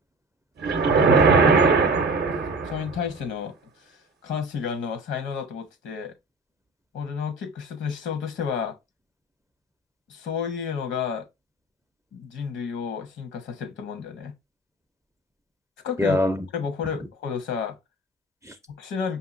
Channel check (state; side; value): normal; both; correlation 0.37